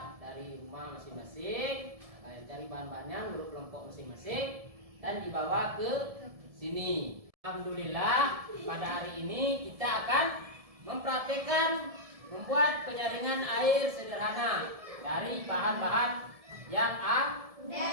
dari rumah masing-masing. Kalian cari bahan-bahannya menurut kelompok masing-masing dan dibawa ke sini. Alhamdulillah, pada hari ini kita akan mempraktekkan membuat penyaringan air sederhana dari bahan-bahan yang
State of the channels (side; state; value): left; late; 1.7 ms